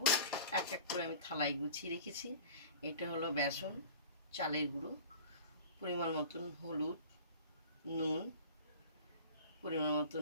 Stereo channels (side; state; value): both; inverted; correlation -0.41